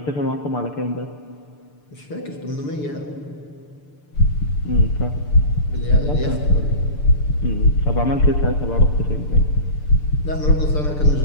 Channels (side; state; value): right; late; 6.8 ms